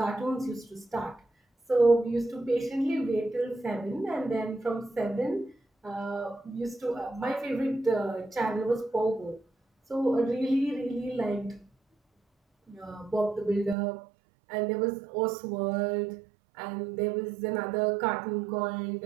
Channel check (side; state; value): left; drops out; at 13.8 s